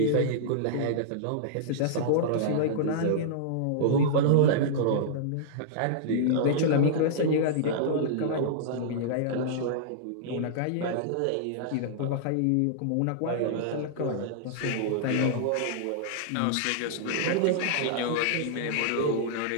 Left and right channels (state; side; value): different; both; correlation -0.02